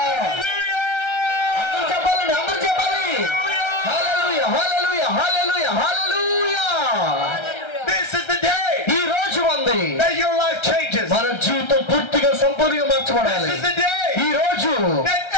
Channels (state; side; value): late; right; 1.3 ms